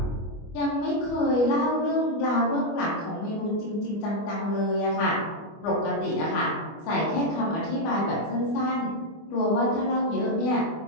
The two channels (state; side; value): late; right; 24 ms